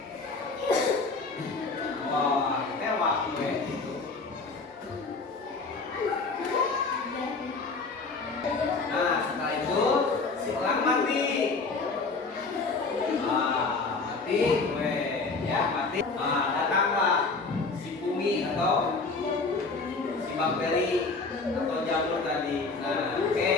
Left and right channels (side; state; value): right; quieter; 4.0 dB